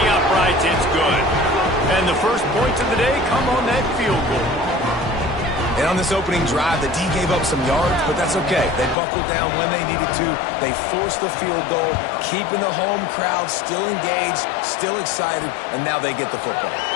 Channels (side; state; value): right; drops out; at 9.0 s